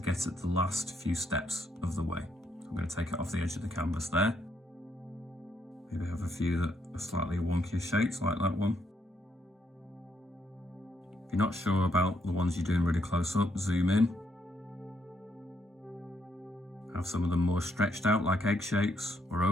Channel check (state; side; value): normal; both; correlation 0.75